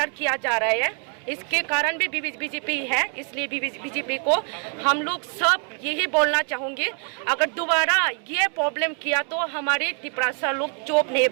किया जा रहा है। इसके कारण भी बीजेपी है, इसलिए बीजेपी को हम लोग सब यही बोलना चाहेंगे, अगर दोबारा ये प्रॉब्लम किया तो हमारे तिपरासा लोग चुप नहीं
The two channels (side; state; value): left; quieter; 39.7 dB